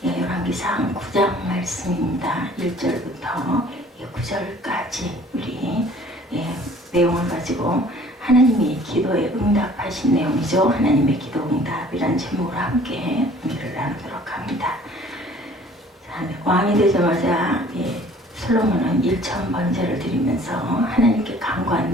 열왕기상 9장 말씀입니다. 1절부터 9절까지 우리 내용을 가지고 하나님이 기도에 응답하신 내용이죠. 하나님의 기도 응답이란 제목으로 함께 은혜를 나누도록 합니다. 왕이 되자마자 솔로몬은 1,000번제를 드리면서 하나님께 간구한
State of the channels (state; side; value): normal; both; correlation 0.53